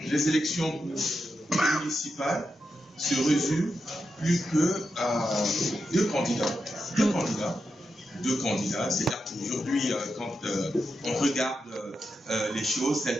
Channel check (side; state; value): both; normal; correlation 0.87